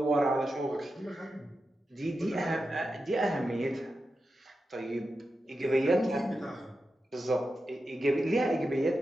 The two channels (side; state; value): both; normal; correlation 0.90